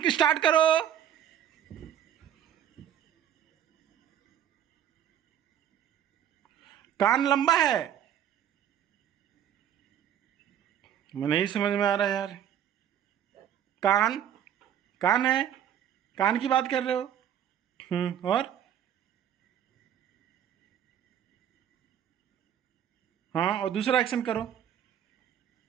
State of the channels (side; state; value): left; quieter; 9.9 dB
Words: स्टार्ट करो। कान लंबा है? मैं नहीं समझ में आ रहा यार। कान कान है, कान की बात कर रहे हो? और हाँ, और दूसरा एक्शन करो।